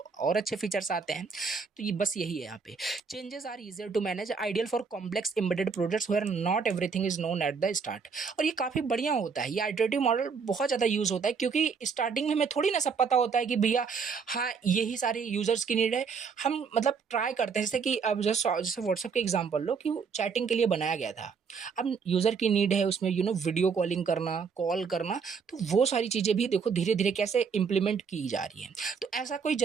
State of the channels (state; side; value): quieter; left; 5.7 dB